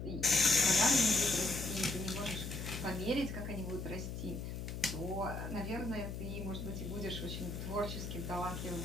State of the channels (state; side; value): noise; left; hum, 6 dB below the sound